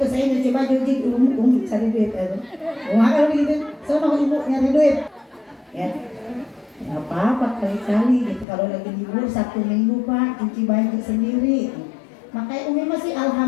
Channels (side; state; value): right; drops out; at 8.5 s